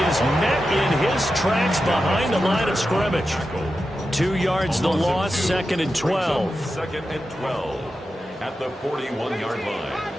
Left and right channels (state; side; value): normal; both; correlation 0.90